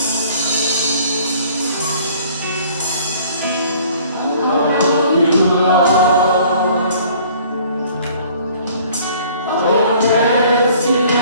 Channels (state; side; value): inverted; both; correlation -0.54